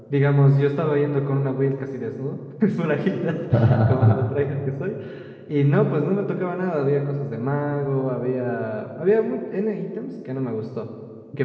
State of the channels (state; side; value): identical; both; correlation 1.00